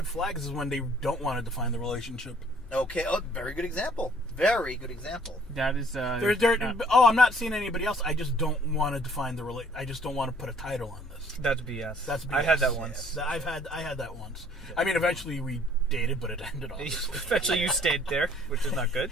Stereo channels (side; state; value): both; normal; correlation 0.58